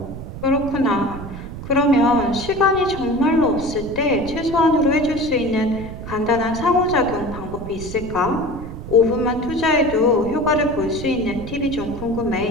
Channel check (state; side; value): noise; right; rumble, 10 dB below the sound